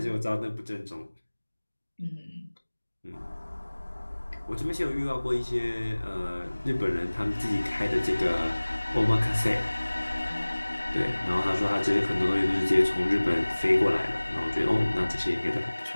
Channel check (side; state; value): both; inverted; correlation -1.00